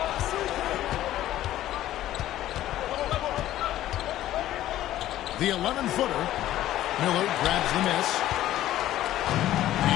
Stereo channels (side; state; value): right; quieter; 13.6 dB